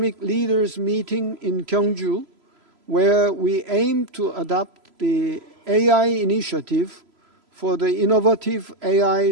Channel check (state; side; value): late; left; 3.0 ms